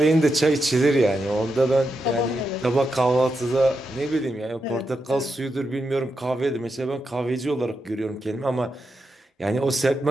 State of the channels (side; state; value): both; normal; correlation 0.86